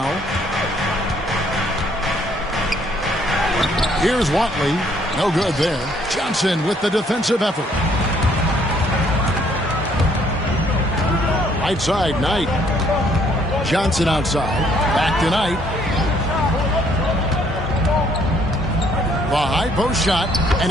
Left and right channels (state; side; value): normal; both; correlation 0.65